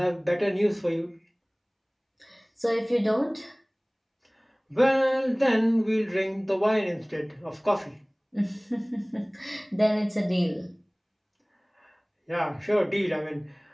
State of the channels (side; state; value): both; identical; correlation 1.00